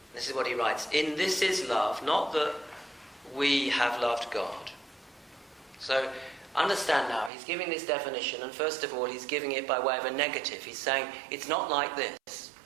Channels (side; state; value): left; drops out; at 7.3 s